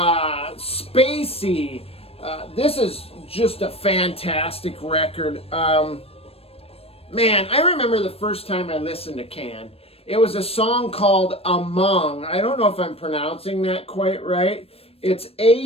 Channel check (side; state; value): right; late; 0.28 ms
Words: This is just a fantastic record. Man, I remember the first time I listened to Can. It was a song called Among. I don't know if I'm pronouncing that quite right. It's